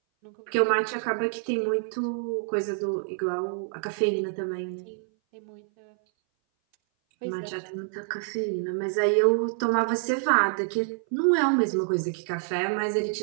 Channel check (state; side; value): silent; left; 58 dB below the other